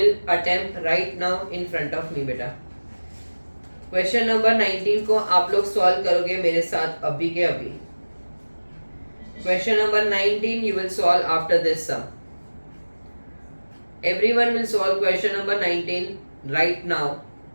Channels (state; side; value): inverted; both; correlation -1.00